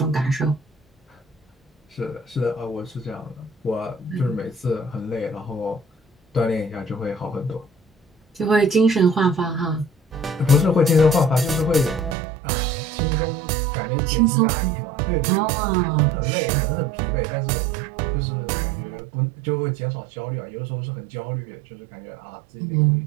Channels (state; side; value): drops out; left; at 12.2 s